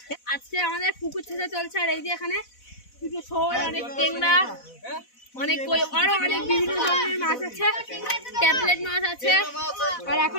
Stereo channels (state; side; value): late; right; 4.0 ms